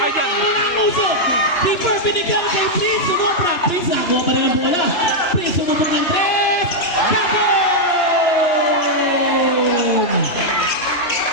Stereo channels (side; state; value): right; late; 2.9 ms